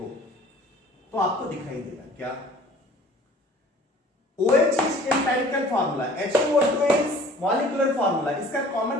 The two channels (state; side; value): normal; both; correlation 0.50